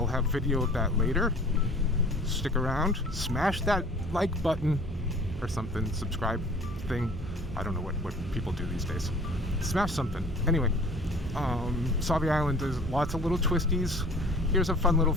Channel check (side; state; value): both; normal; correlation 0.48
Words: have video of that later. Stick around, smash that like button or something, subscribe thing. I don't know what people do these days. Smash something. Anyway, Sauvie Island does lots of little twisties. Here's a fun little